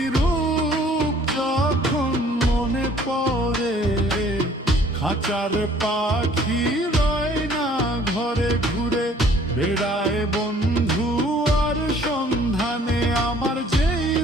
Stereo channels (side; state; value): both; normal; correlation 0.56